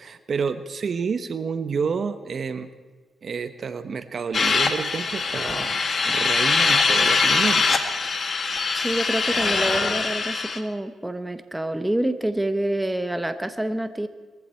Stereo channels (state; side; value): normal; both; correlation 0.86